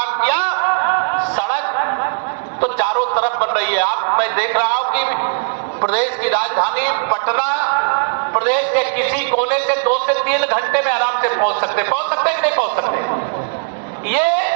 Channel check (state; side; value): silent; left; digital silence